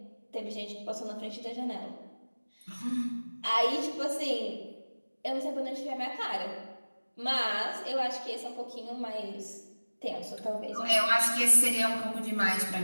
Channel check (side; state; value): both; inverted; correlation -1.00